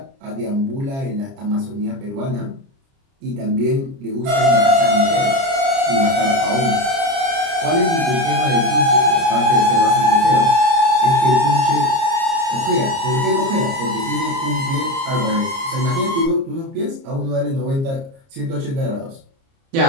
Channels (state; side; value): late; left; 30 ms